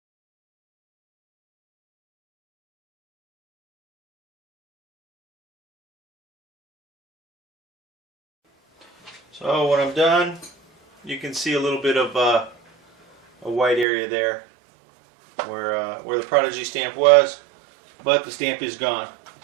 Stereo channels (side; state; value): left; drops out; at 13.9 s